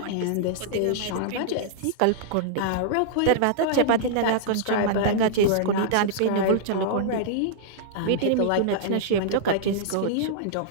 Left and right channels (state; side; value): different; both; correlation -0.01